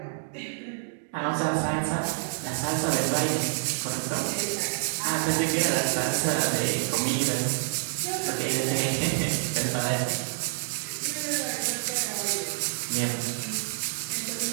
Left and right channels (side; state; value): left; silent; digital silence